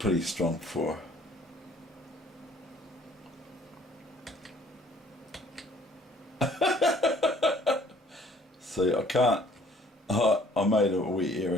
strong for see, I can't I made a wee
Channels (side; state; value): both; normal; correlation 0.58